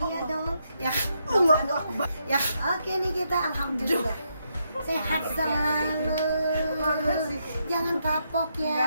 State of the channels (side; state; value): both; inverted; correlation -0.79